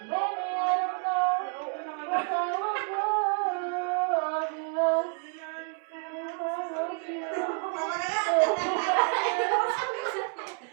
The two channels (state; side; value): quieter; left; 39.3 dB